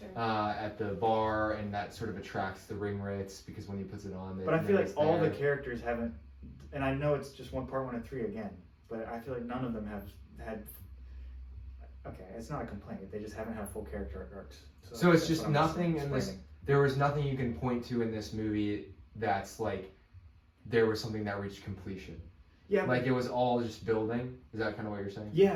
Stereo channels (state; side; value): identical; both; correlation 1.00